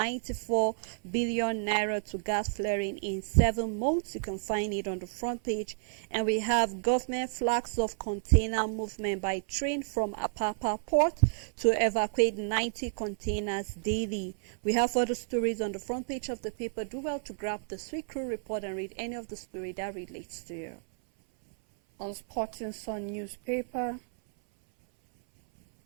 billion Naira to gas flaring in 7 months. You can find it on the front page. And we have government flags of container movement by train from Apapa port to evacuate 90 containers daily. We have other stories on the front page of the paper. Do well to grab the Sweet Crew Report and read any of the story that relates to you. On Sporting Sun newspaper,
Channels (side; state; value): left; silent; 57 dB below the other